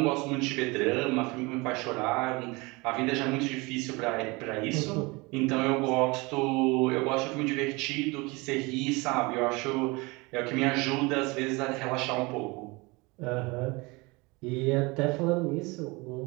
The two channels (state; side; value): quieter; left; 25.3 dB